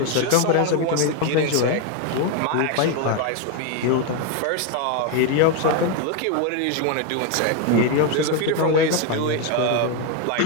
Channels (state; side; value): different; both; correlation 0.02